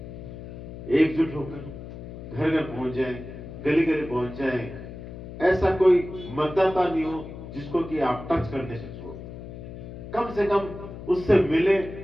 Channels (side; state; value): left; noise; hum, 12 dB below the sound